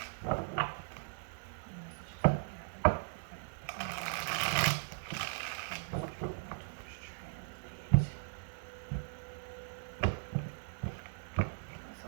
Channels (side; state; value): left; silent; digital silence